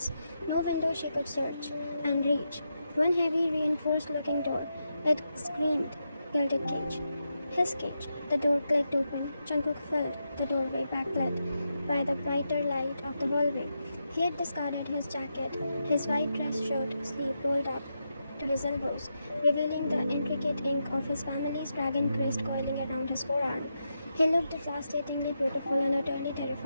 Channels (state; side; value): inverted; both; correlation -0.86